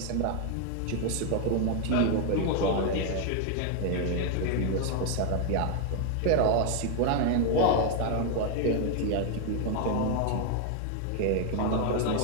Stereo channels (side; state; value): both; different; correlation 0.00